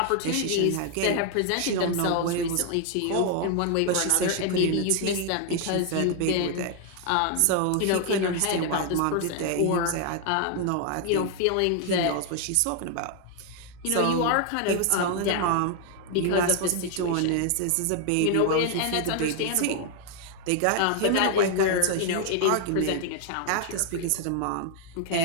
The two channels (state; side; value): different; both; correlation 0.00